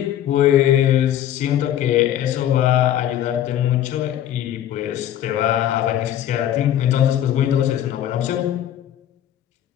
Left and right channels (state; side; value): quieter; right; 11.3 dB